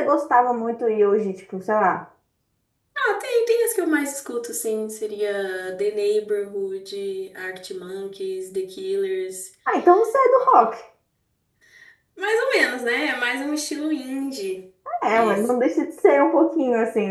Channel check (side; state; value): both; identical; correlation 1.00